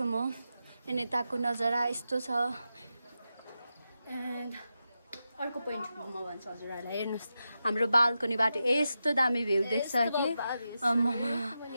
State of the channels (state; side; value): inverted; both; correlation -0.89